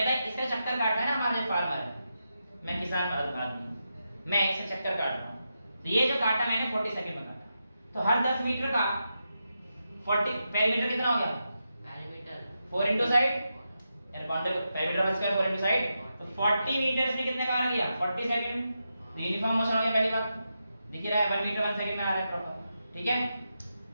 है इसका चक्कर काटना है ना, हमारा जो फार्मर है, मैं किसान आदमी, मैं इसका चक्कर काट रहा हूँ, तो ये जो काटा मैंने 40 सेकंड में काटा, तो हर 10 मीटर का 40 पेरीमीटर कितना हो गया? पेरीमीटर 4 इनटू साइड, यानी बाउंड्री पेरीमीटर का स्क्वायर 4 इनटू साइड, तो 40 मीटर्स में कितने का आ गया? 40 सेकंड। तो यूनिफॉर्म मोशन हो गया, पहली बात दिख रहा है 1 मीटर 1 सेकंड में आ रहा है प्रॉपर, ठीक है।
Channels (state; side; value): inverted; both; correlation -0.87